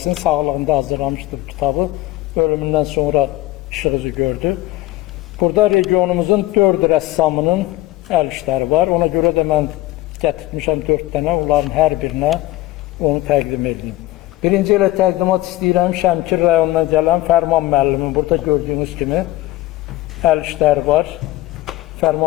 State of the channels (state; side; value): quieter; right; 17.0 dB